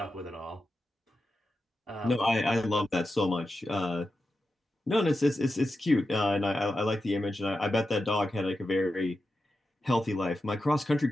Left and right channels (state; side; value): normal; both; correlation 0.90